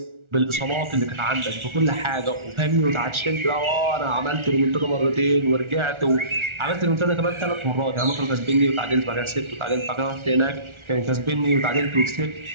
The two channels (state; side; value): late; left; 1.4 ms